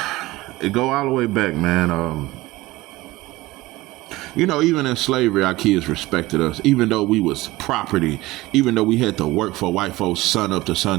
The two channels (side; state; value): left; quieter; 19.1 dB